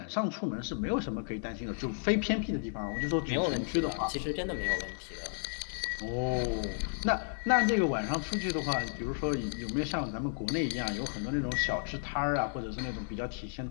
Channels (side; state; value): right; silent; digital silence